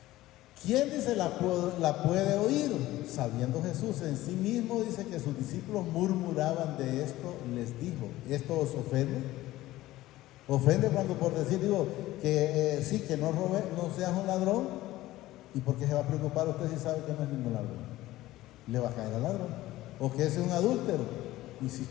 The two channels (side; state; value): right; quieter; 16.4 dB